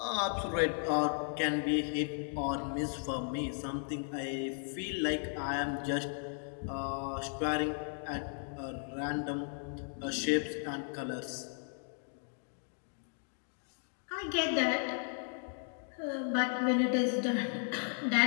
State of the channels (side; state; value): right; silent; 54 dB below the other